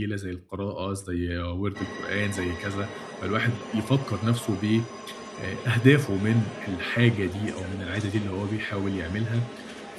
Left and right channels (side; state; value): both; identical; correlation 1.00